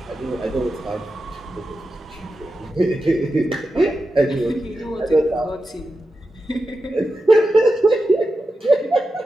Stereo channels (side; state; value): both; normal; correlation 0.90